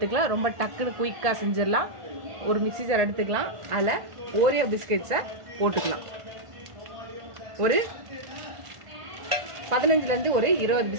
ரொம்ப டக்குன்னு குயிக்காக செஞ்சிடலாம். ஒரு மிக்ஸி ஜார் எடுத்துக்கலாம். அதில் ஓரியோ பிஸ்கெட்ஸை போட்டுக்கலாம். ஒரு 15லேருந்து ஒரு 20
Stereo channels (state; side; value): late; left; 1.5 ms